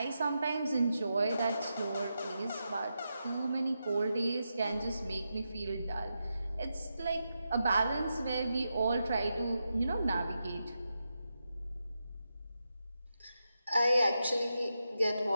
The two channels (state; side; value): inverted; both; correlation -0.87